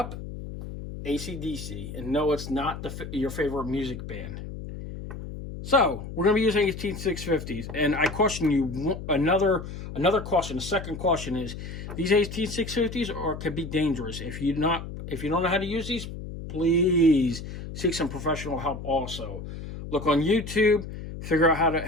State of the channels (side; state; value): left; noise; hum, 9 dB below the sound